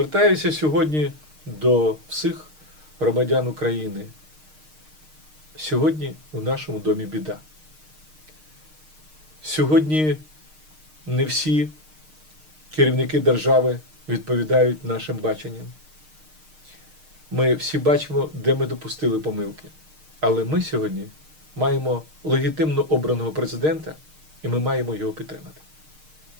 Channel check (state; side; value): late; left; 6.5 ms